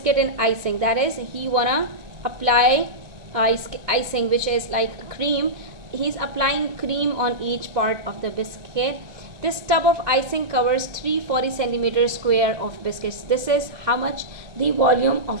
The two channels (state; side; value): late; left; 1.9 ms